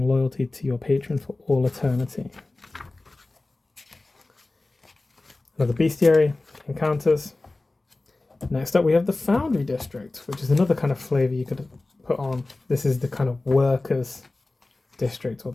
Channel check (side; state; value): right; quieter; 3.0 dB